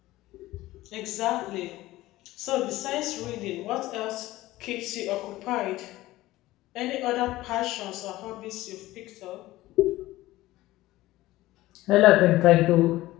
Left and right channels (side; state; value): right; quieter; 17.2 dB